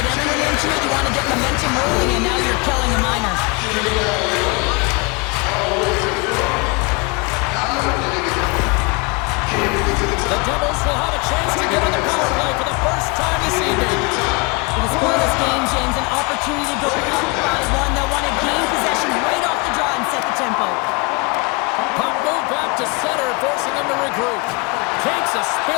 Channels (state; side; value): quieter; right; 29.3 dB